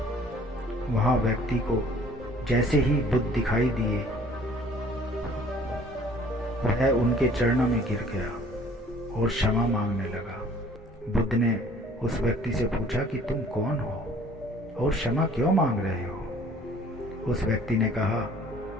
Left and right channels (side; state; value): both; normal; correlation 0.54